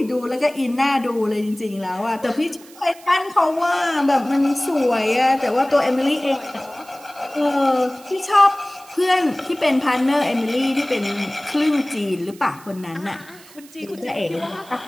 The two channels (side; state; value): right; noise; hiss, 22 dB below the sound